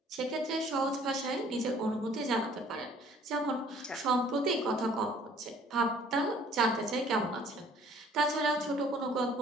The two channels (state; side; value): normal; both; correlation 0.55